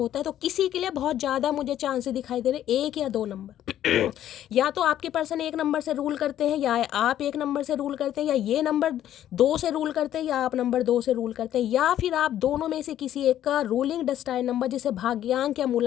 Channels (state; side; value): quieter; right; 11.6 dB